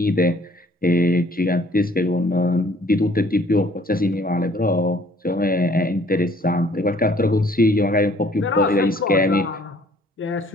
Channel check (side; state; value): both; normal; correlation 0.58